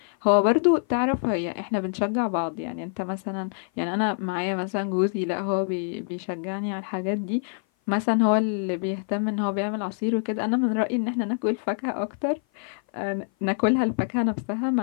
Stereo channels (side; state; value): right; silent; 56 dB below the other